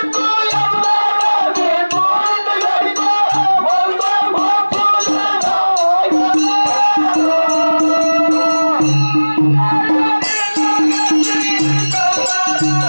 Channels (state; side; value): inverted; both; correlation -1.00